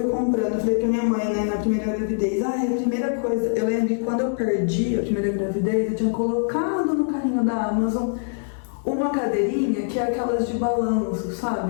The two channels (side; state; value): right; silent; digital silence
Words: comprando, eu falei pra minha mãe, né, na primeira gravidez, a primeira coisa, eu lembro que quando eu perdi a primeira gravidez, eu tinha colocado no carrinho da Amazon uma cadeirinha que é aquelas de balanço,